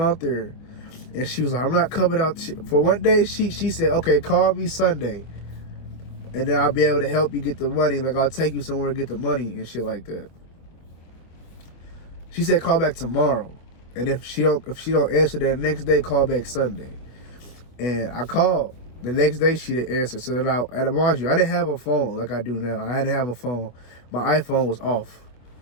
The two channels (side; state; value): right; late; 25 ms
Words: there. And she was like, I'm not coming out. For one day, she said, okay, call me Sunday. And then I'll be able to help you get the money. Like, I'll take you somewhere to get the money and shit like that. She said, call back tomorrow. And if she don't answer that next day, call back Sunday. And I called. The next day, she didn't answer. So then and mind you, I didn't have a phone like I do now. I didn't have a phone. My iPhone was off.